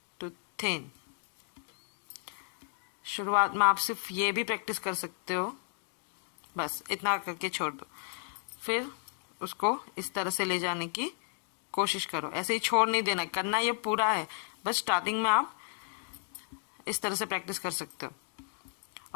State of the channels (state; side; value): silent; right; 55 dB below the other